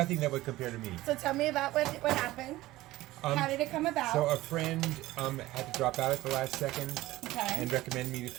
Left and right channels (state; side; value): quieter; left; 17.3 dB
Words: that would compare to me. So tell me about what happened. How did it come about? So a friend had to drop out at the last second Okay. and recommended me to